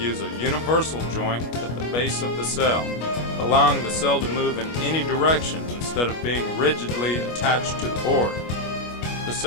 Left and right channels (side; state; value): right; late; 25 ms